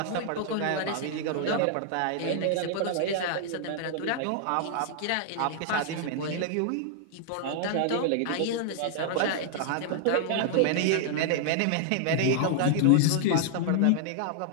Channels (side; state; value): both; different; correlation 0.00